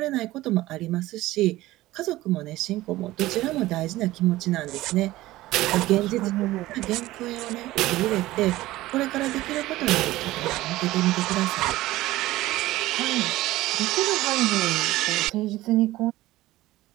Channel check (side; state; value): left; quieter; 17.1 dB